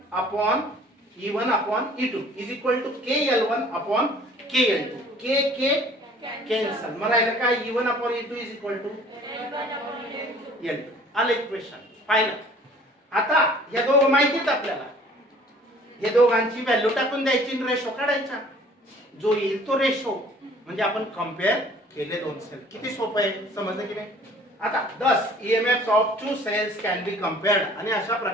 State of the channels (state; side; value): normal; both; correlation 0.52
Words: upon E2 is equal to KL1 upon KL2. K cancel, मग राहिलं काय, E1 upon E2 is equal to L2. आलं इक्वेशन फायनल. आता या दोघं माहितीत आपल्याला, हे दोघांची व्हॅल्यू टाकून द्यायची, रेशो काढायचा, जो येईल तो रेशो, म्हणजे आपण कम्पेअर केले दोन सेल. किती सोपं आहे, समजलं की नाही. आता 10 EMFs of two cells can be compared, आणि अशा